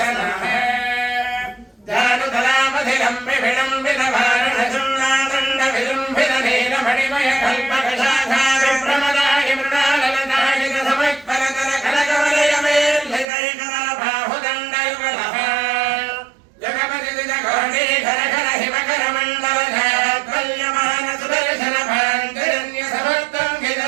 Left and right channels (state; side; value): drops out; left; at 13.2 s